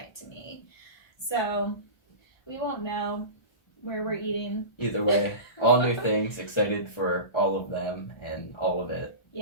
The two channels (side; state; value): right; late; 1.3 ms